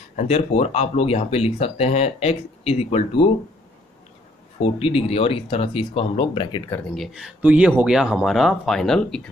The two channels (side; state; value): both; normal; correlation 0.65